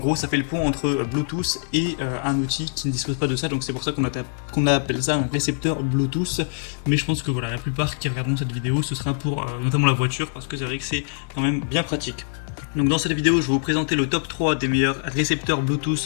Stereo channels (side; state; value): right; silent; 60 dB below the other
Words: ça fait le pont entre Bluetooth et un outil qui ne dispose pas de ça, donc c'est pour ça qu'on appelle ça un récepteur Bluetooth. Mais je pense que voilà, la plupart qui regarderont cette vidéo, ce sera pour notamment la voiture, parce que c'est vrai que c'est quand même bien pratique. Donc dans cette vidéo, je vais vous présenter le top 3 des meilleurs récepteurs